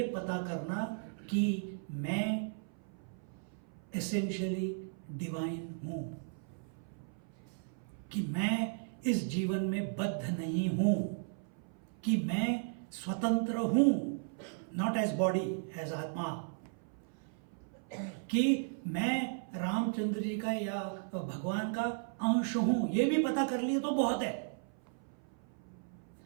पता करना कि मैं एसेंशियली डिवाइन हूं, कि मैं इस जीवन में बद्ध नहीं हूं, कि मैं स्वतंत्र हूं, नॉट एज बॉडी, एज आत्मा, कि मैं रामचंद्र जी का या भगवान का अंश हूं। ये भी पता कर लिए तो बहुत है,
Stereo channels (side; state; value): left; silent; 54 dB below the other